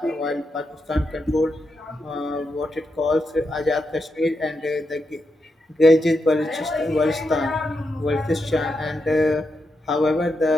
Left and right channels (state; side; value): normal; both; correlation 0.85